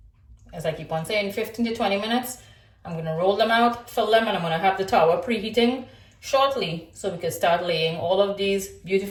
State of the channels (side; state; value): both; identical; correlation 1.00